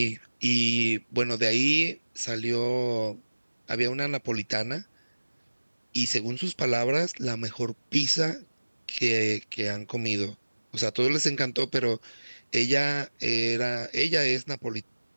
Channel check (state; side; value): inverted; both; correlation -1.00